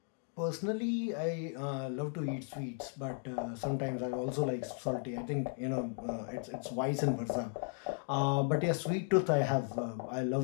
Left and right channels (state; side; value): silent; right; 54 dB below the other